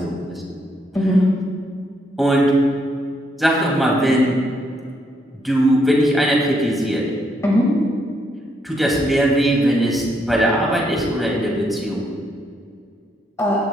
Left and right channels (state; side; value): normal; both; correlation 0.75